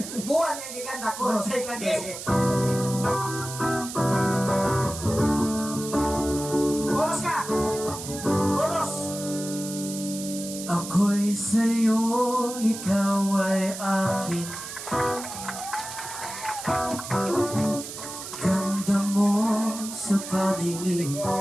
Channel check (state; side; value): noise; right; hiss, 9 dB below the sound